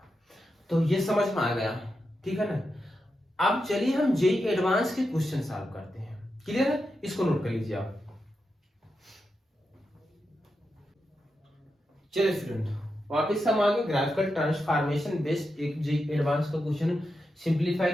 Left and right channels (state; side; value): normal; both; correlation 0.88